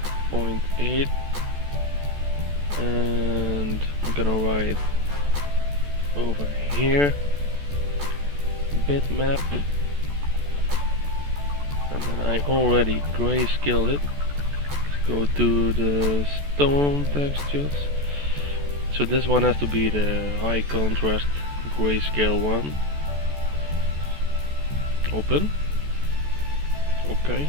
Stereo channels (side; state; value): left; late; 14 ms